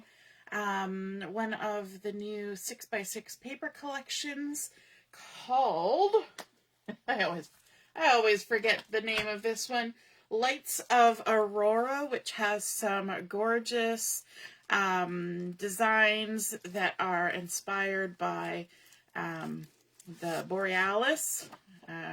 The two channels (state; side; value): identical; both; correlation 1.00